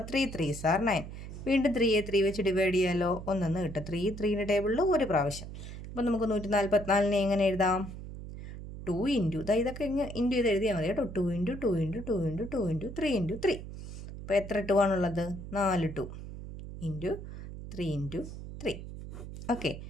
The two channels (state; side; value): noise; right; hum, 10 dB below the sound